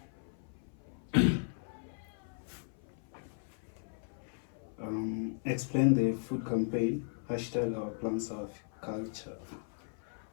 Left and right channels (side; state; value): right; silent; 53 dB below the other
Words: Explain the food campaign. Hashtag our plants of culture.